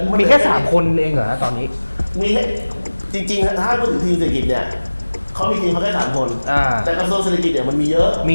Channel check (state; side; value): inverted; both; correlation -1.00